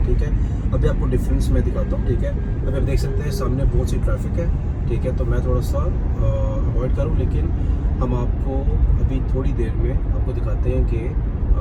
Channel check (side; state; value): both; identical; correlation 1.00